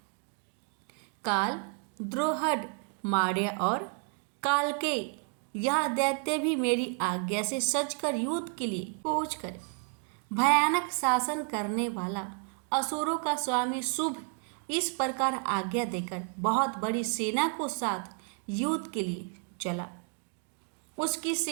काल, द्रोहड, मार्य और कालके यह दैत्य भी मेरी आज्ञा से सजकर युद्ध के लिए कूच करे। भयानक शासन करने वाला असुरों का स्वामी शुभ इस प्रकार आज्ञा देकर बहुत बड़ी सेना को साथ युद्ध के लिए चला। उसकी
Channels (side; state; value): left; quieter; 38.5 dB